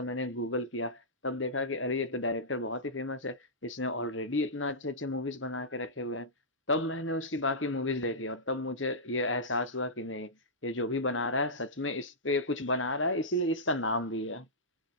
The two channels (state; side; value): normal; both; correlation -0.15